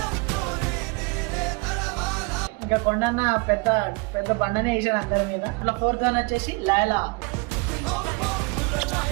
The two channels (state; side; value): quieter; left; 28.5 dB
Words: ఇంకా కొండన్న పెద్ద పెద్ద బండనే వేసాడు అందరి మీద. అట్లా 4th వన్ వచ్చేసి లైలా.